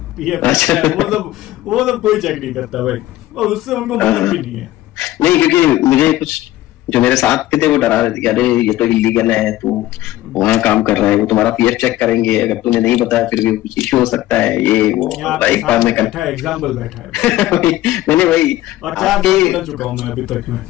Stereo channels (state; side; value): quieter; right; 15.5 dB